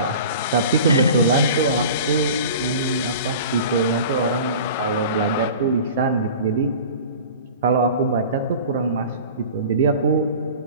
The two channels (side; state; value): both; inverted; correlation -0.39